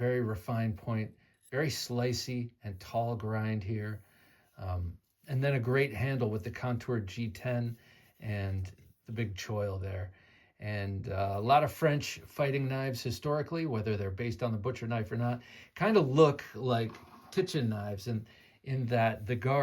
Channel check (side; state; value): both; identical; correlation 1.00